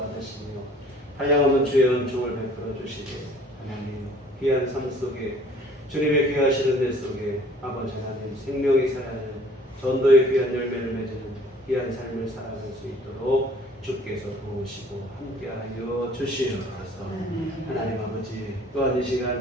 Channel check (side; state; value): both; normal; correlation 0.53